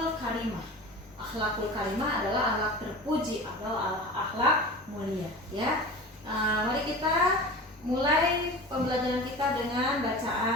karimah. Akhlakul karimah adalah akhlak terpuji atau akhlak mulia ya. Mari kita mulai pembelajaran kita dengan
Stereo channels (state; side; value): normal; both; correlation 0.34